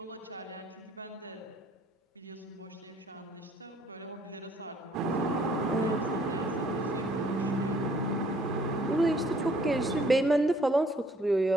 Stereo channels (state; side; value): normal; both; correlation 0.61